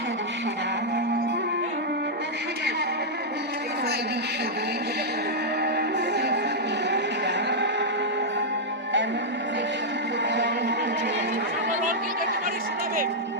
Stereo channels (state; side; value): normal; both; correlation -0.06